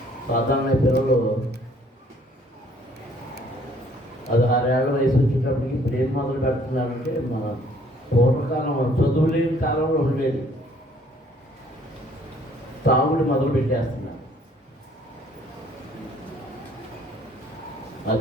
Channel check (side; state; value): both; normal; correlation 0.60